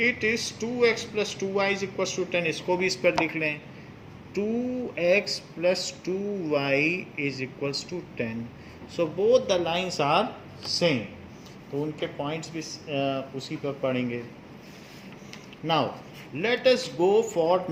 it is 2x plus 2y is equal to 10। इसको भी इस पर लिख लें। 2x plus 2y is equal to 10। So both the lines are same, तो उनके पॉइंट्स भी उसी पर पड़ेंगे। Now let us go for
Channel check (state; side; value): identical; both; correlation 1.00